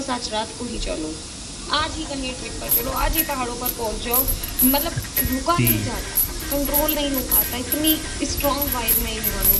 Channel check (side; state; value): both; identical; correlation 1.00